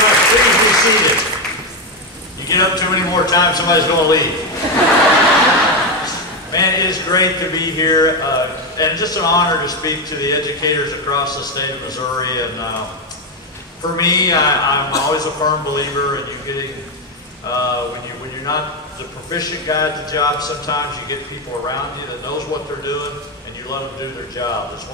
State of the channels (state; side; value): normal; both; correlation 0.09